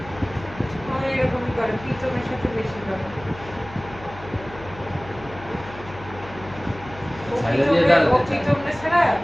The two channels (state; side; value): noise; left; hum, 17 dB below the sound